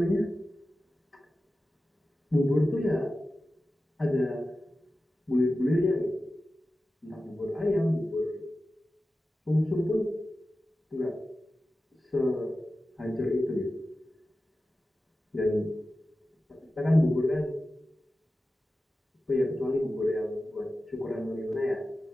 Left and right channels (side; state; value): both; normal; correlation 0.94